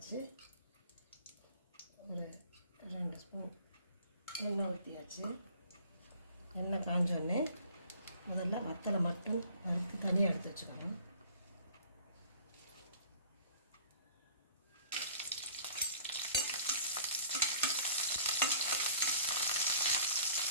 ஒரு 2 ஸ்பூன் எண்ணெய் ஊற்றியாச்சு. எண்ணெய் காஞ்சோடனே முதல்ல வத்தலை மட்டும் வறுத்து தனியாக எடுத்து வச்சுக்கணும்.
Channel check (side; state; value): both; inverted; correlation -0.50